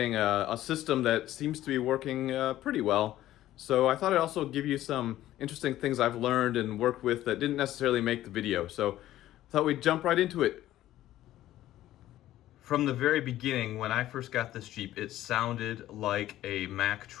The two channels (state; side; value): quieter; right; 14.0 dB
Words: a system that seems to be working pretty well. So I thought I'd also give you some interesting things I've learned and worked with that didn't necessarily make the video. So I thought we'd jump right into it. From the very beginning, when I first got this Jeep, it sounded like a Mack